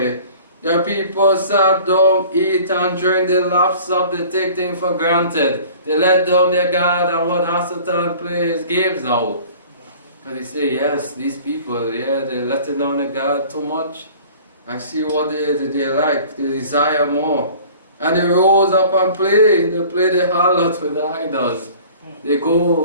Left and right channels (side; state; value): both; inverted; correlation -0.47